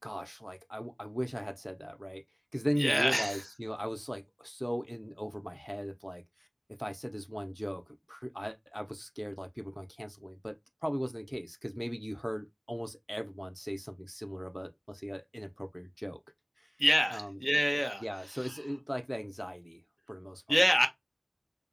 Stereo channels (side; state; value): both; identical; correlation 1.00